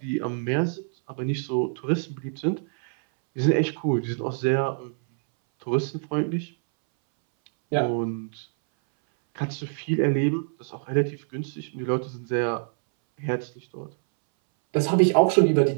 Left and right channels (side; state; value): left; silent; 61 dB below the other